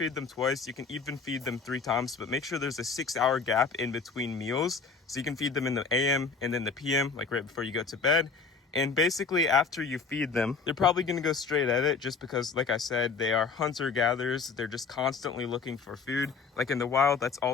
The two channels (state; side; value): quieter; right; 4.8 dB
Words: them twice. You can even feed them 3 times, but make sure there's a 6-hour gap in between meals. So you can feed them in the AM and then the PM, like right before you go to bed. And basically, after you feed them, they're probably going to go straight at it just because, like I said, they are hunter-gatherers. They're just constantly looking for food. Like in the wild, that's